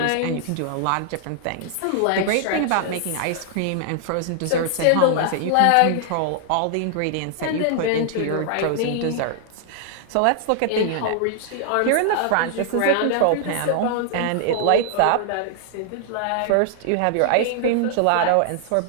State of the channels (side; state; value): both; different; correlation 0.00